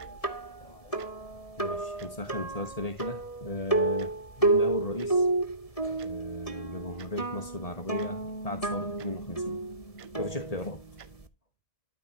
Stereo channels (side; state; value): right; late; 1.7 ms